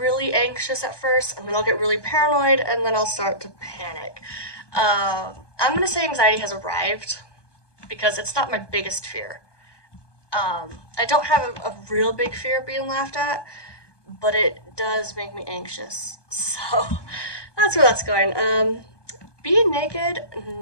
anxious at first, and then I'll get really paranoid, and then I'll start to panic. I'm gonna say anxiety has arrived, because it's not my biggest fear. I don't have a real big fear of being laughed at, but it does make me anxious. So, that's where that's going. Being naked,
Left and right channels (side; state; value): right; late; 1.2 ms